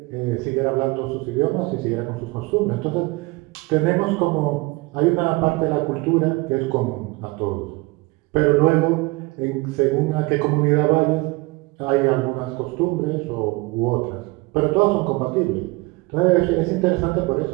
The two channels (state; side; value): quieter; left; 24.1 dB